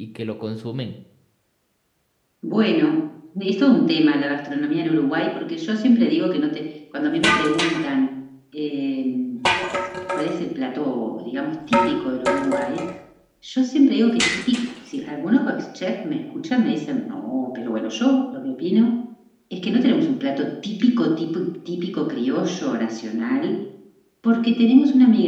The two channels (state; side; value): identical; both; correlation 1.00